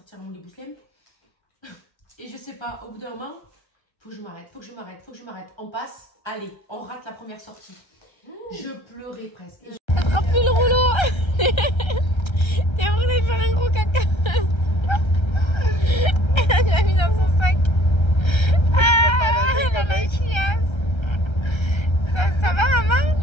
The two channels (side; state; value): right; late; 1.3 ms